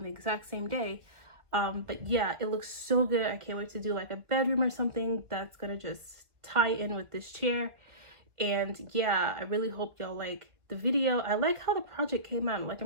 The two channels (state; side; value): late; left; 1.7 ms